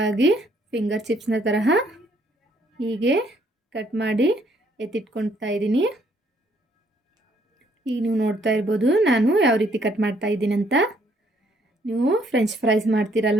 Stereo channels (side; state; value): both; normal; correlation 0.67